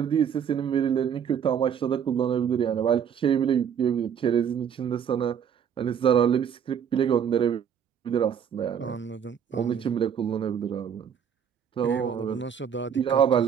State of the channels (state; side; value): quieter; left; 8.1 dB